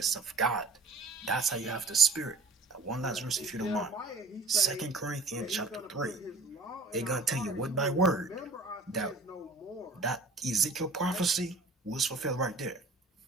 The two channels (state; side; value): quieter; left; 3.4 dB